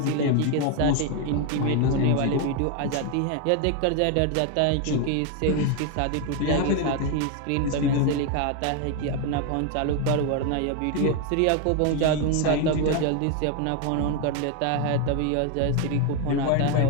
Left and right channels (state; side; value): different; both; correlation 0.01